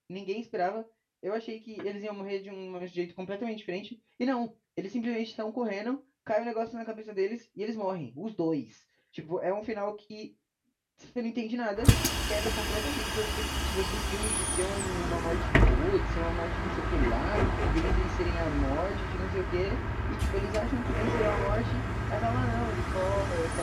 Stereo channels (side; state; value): both; identical; correlation 1.00